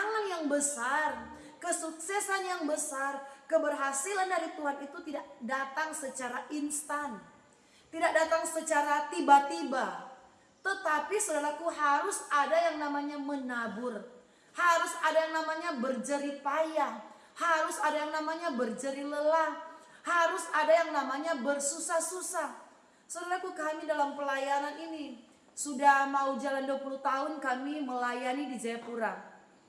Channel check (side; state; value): both; identical; correlation 1.00